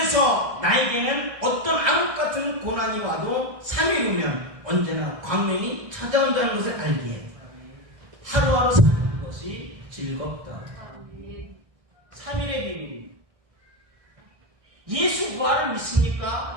나에게는 어떤 암흑 같은 고난이 와도 3일 후면 언제나 광명이 찾아온다는 것을 알기에 하루하루 사는 것이 즐겁다. 3일의 비밀입니다. 예수 부활을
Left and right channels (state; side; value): late; left; 1.6 ms